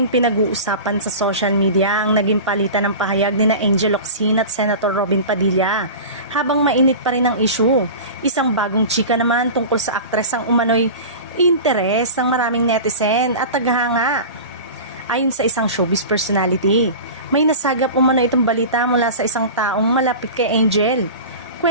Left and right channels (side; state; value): both; inverted; correlation -0.33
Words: pinag-uusapan sa social media ang naging palitan ng pahayag ni na Angel Locsin at Senator Robin Padilla. Habang mainit pa rin ang issue, isang bagong chika naman tungkol sa aktres ang umano'y interes ng maraming netizen at taghanga. Ayon sa isang showbiz personality, may nasagap umano itong balita mula sa isang taong malapit kay Angel.